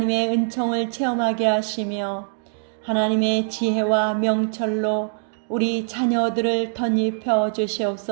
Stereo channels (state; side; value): silent; left; 64 dB below the other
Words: 은총을 체험하게 하시며 하나님의 지혜와 명철로 우리 자녀들을 덧입혀